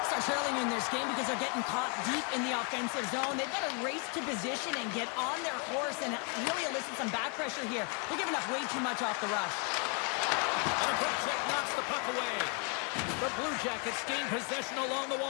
are trailing in this game because they're getting caught deep in the offensive zone. They've got to race to position and get on their horse and really elicit some back pressure here. They're giving up way too much off the rush. And a quick check knocks the puck away. The Blue Jackets gain possession along the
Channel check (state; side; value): quieter; right; 37.5 dB